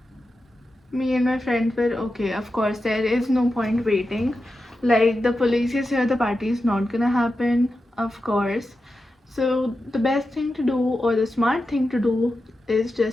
me and my friends were okay. Of course, there is no point waiting. Like, the police is here, the party is not gonna happen, of course. So the best thing to do, or the smart thing to do, is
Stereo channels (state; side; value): normal; both; correlation 0.90